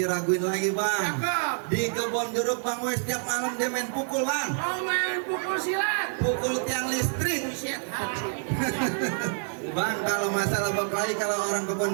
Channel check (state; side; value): silent; left; digital silence